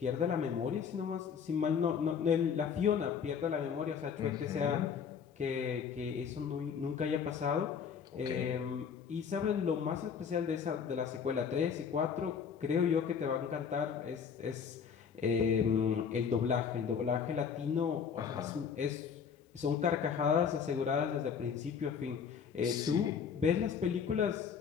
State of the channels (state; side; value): quieter; right; 6.8 dB